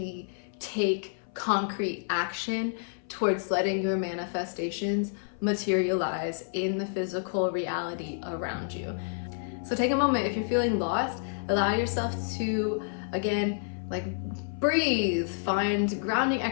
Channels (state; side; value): silent; right; 58 dB below the other